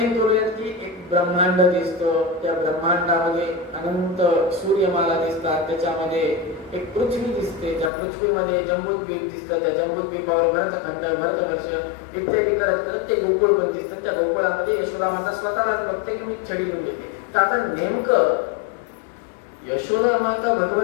करूयात की एक ब्रह्मांड दिसतं, त्या ब्रह्मांडामध्ये अनंत सूर्यमाला दिसतात, त्याच्यामध्ये एक पृथ्वी दिसते, त्या पृथ्वीमध्ये जम्बूद्वीप दिसतं, त्या जम्बूद्वीपावर भरतखंड, भरतवर्ष इत्यादी करत करत ते गोकुळ पण दिसतं. त्या गोकुळामध्ये यशोदा माता स्वतःलाच बघते की मी छडी घेऊन येते. तर आता नेमकं यशोदा माता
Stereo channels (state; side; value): drops out; right; at 7.9 s